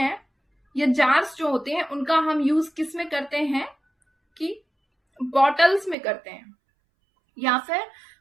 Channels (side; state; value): left; drops out; at 6.0 s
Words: या जार्स जो होते हैं उनका हम यूज किस में करते हैं कि बॉटल्स में करते हैं, या फिर